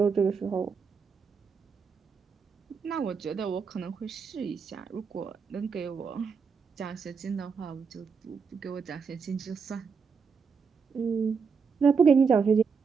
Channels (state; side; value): quieter; left; 5.6 dB